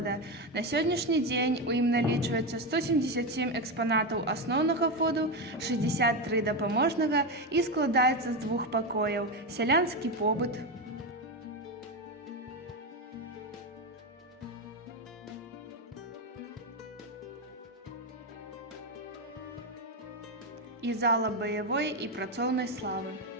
На сённяшні дзень у ім налічваецца 177 экспанатаў асноўнага фонду, 63 дапаможнага і складаецца з 2 пакояў: сялянскі побыт, і зала баявой і працоўнай славы.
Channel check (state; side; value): normal; both; correlation 0.12